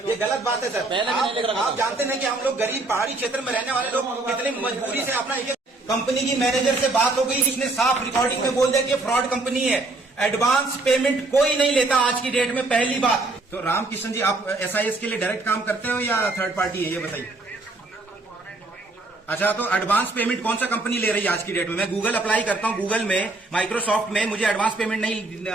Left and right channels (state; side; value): quieter; left; 3.1 dB